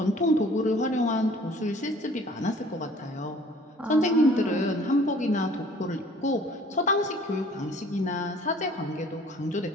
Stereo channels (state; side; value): normal; both; correlation 0.53